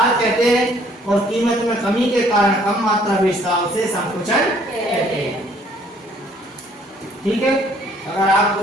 कहते हैं, और कीमत में कमी के कारण कम मात्रा बेचता है उसे संकुचन कहते हैं। ठीक है, अगर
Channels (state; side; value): normal; both; correlation 0.61